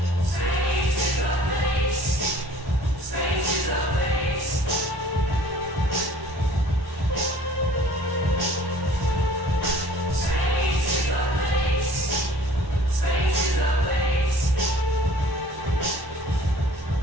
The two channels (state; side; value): late; left; 1.1 ms